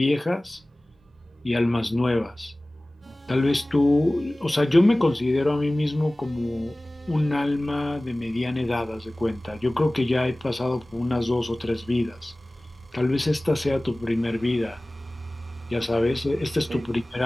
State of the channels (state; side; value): normal; both; correlation 0.98